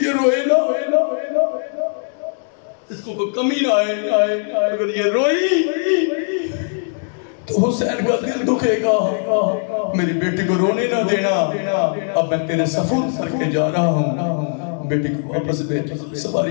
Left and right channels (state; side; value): silent; right; digital silence